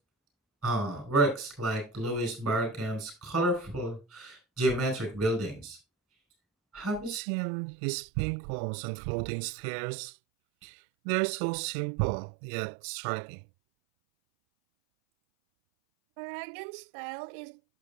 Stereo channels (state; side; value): drops out; left; at 7.2 s